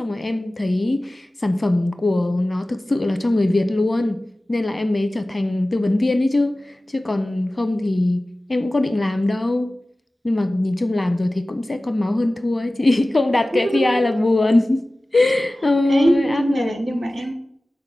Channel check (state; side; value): normal; both; correlation 0.97